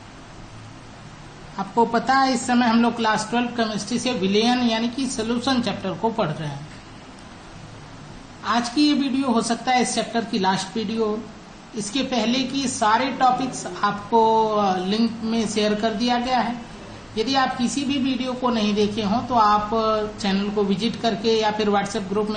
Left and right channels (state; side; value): identical; both; correlation 1.00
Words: आपको पता है इस समय हम लोग क्लास 12 केमिस्ट्री से विलयन यानी कि सोल्यूशन चैप्टर को पढ़ रहे हैं। आज की ये वीडियो हो सकता है इस चैप्टर की लास्ट वीडियो। इसके पहले की सारे टॉपिक्स आपको लिंक में शेयर कर दिया गया है। यदि आप किसी भी वीडियो को नहीं देखे हों तो आप चैनल को विजिट करके या फिर व्हाट्सएप ग्रुप